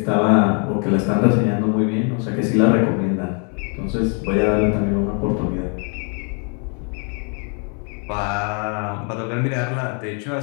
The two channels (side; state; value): right; quieter; 38.8 dB